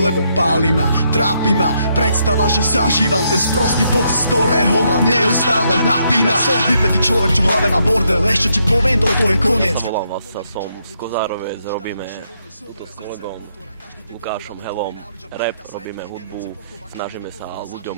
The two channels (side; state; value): both; inverted; correlation -0.76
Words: páli ma, trápi ma predstava, že zažívam ten sprostý pocit, z ktorého ma neustále napína. Som vypätý človek, čo v hlave má bordel, ešte ti poviem, toto je koniec. Volám vás, som z Kozárovec, robíme túto s kolegom Lukášom Helom rap, robíme hudbu, snažíme sa